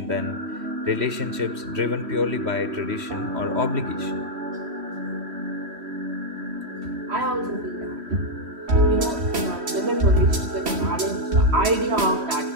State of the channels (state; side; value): late; left; 3.1 ms